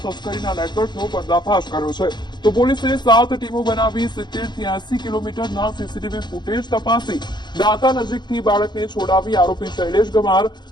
તસ્કરીના નેટવર્કનો પર્દાફાશ કર્યો છે. તો પોલીસે 7 ટીમો બનાવી 70 થી 80 કિલોમીટરના સીસીટીવી ફૂટેજ તપાસી દાંતા નજીકથી બાળકને છોડાવી આરોપી શૈલેષ ગમાર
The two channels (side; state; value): right; late; 0.21 ms